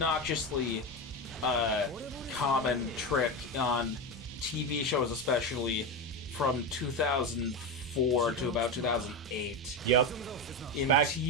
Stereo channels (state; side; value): normal; both; correlation 0.16